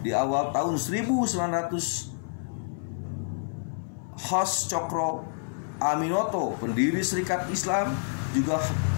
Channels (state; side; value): silent; right; 58 dB below the other